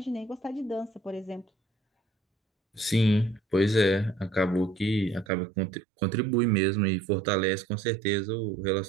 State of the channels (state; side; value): drops out; left; at 5.2 s